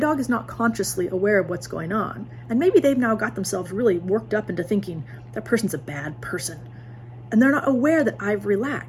is not consciously aware of what's going on. And maybe they've now got themselves really worked up into thinking that person's a bad person. And they're not aware that I've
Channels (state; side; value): identical; both; correlation 1.00